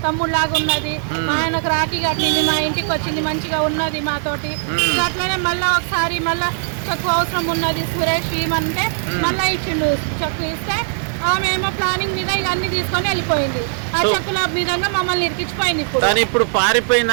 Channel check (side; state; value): left; silent; digital silence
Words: తమ్ముడు లాగా ఉన్నది. మా ఆయనకు రాఖీ కట్టింది, మా ఇంటికి వచ్చింది, మంచిగా ఉన్నది మాతోటి. అట్లనే మళ్ళా ఒకసారి మళ్ళా చెక్కు అవసరం ఉన్నది సురేష్ ఇమంటే మళ్ళా ఇచ్చిండు. చెక్కు ఇస్తే ఆమె ఏమో ప్లానింగ్ మీద ఇక అన్ని తీసుకొని వెళ్ళిపోయింది. ఆ చెక్కుల విధంగా మమ్మల్ని ఇరికిచ్చిపోయింది. ఇప్పుడు